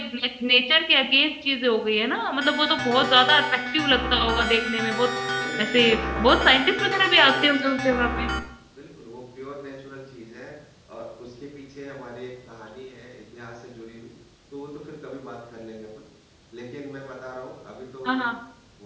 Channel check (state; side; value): identical; both; correlation 1.00